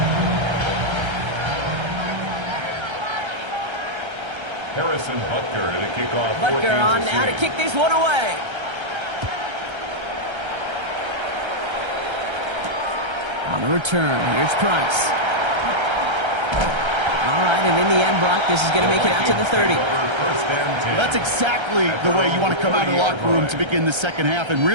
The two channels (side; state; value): left; late; 1.3 ms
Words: Harrison Butker to kick off. Butker on now to kick this one away. On the return, here's Price. All right, and in the end, Brock, this is going to make it out to the 30. That's exactly the way you want to come out of the locker room to begin the second half. And